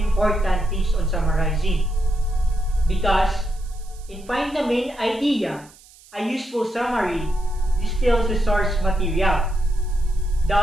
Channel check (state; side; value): noise; right; hiss, 25 dB below the sound